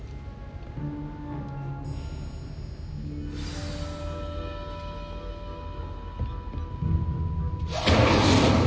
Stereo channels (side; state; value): both; identical; correlation 1.00